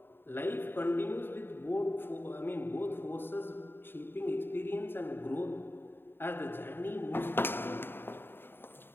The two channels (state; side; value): late; right; 0.10 ms